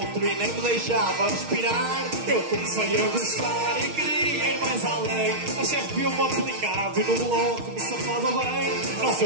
e nem me deixava respirar. Eu comecei a gostar e queria ir mais além. A chefe viu-me aplicado e no bloco me safava bem. Não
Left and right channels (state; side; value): late; left; 6.4 ms